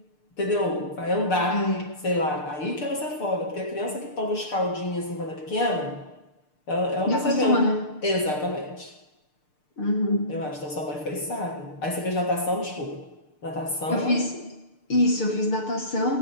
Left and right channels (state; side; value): late; right; 6.7 ms